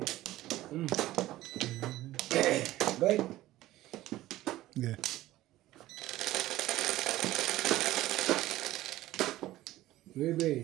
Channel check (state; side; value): quieter; left; 15.8 dB